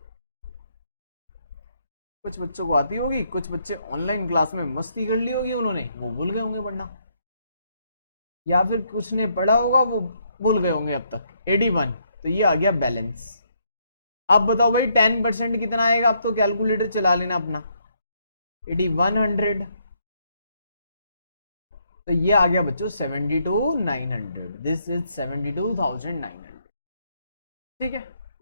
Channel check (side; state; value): both; inverted; correlation -0.73